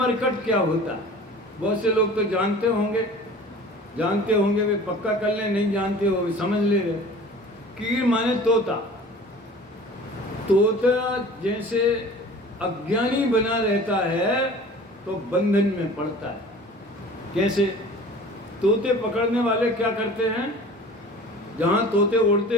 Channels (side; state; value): both; normal; correlation 0.43